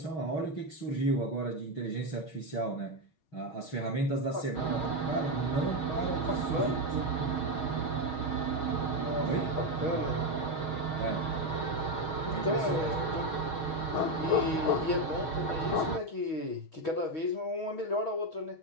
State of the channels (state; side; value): late; right; 6.3 ms